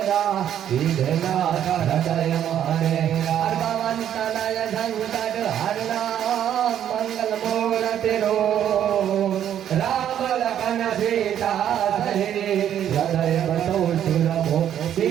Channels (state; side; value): quieter; left; 10.2 dB